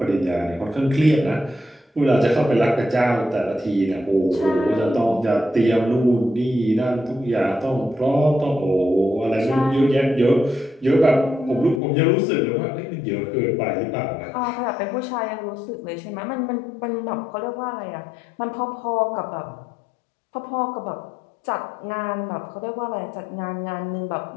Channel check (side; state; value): right; drops out; at 11.8 s